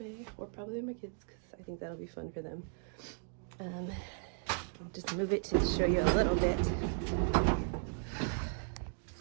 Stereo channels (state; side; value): silent; left; 54 dB below the other